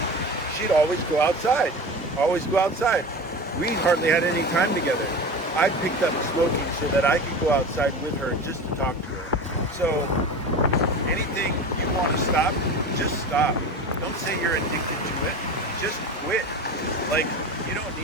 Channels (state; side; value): normal; both; correlation 0.30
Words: She'd always go outside, We hardly had any time together. I picked up smoking so that I could go outside with her just to talk to her. So anything you want to stop, just stop. Don't say you're addicted to it. Just quit. Like, you don't